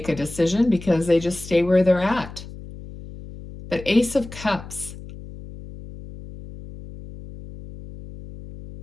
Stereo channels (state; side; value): noise; left; hum, 14 dB below the sound